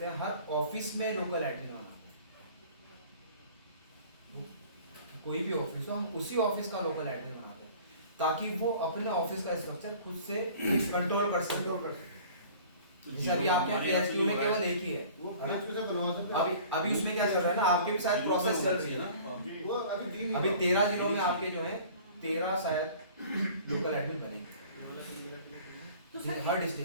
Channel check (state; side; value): inverted; both; correlation -0.47